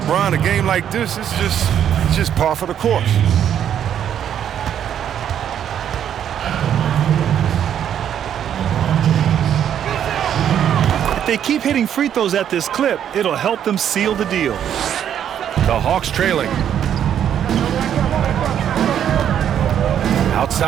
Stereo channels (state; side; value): quieter; left; 9.6 dB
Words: a game like this, it's just par for the course. If they keep hitting free throws at this clip, it'll help them seal the deal. The Hawks trailing.